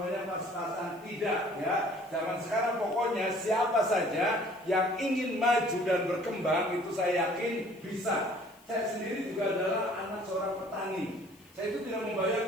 pas-pasan. Tidak ya. Zaman sekarang pokoknya siapa saja yang ingin maju dan berkembang itu saya yakin bisa. Saya sendiri juga adalah anak seorang petani. Saya itu tidak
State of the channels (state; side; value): noise; left; hiss, 28 dB below the sound